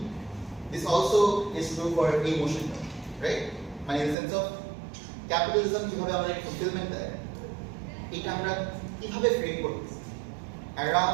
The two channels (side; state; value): left; drops out; at 4.2 s